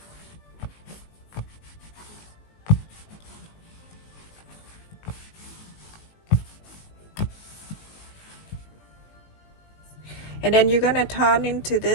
And then you're gonna turn into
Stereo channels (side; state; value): right; late; 19 ms